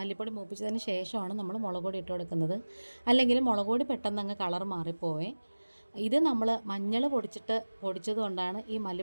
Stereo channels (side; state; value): both; inverted; correlation -1.00